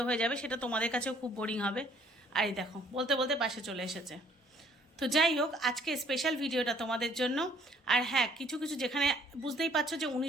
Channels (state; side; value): normal; both; correlation 0.61